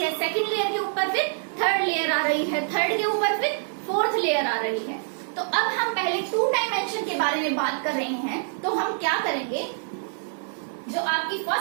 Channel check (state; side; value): silent; left; digital silence